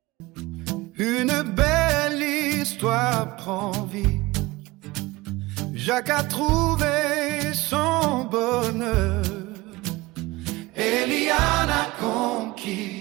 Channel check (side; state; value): left; quieter; 20.7 dB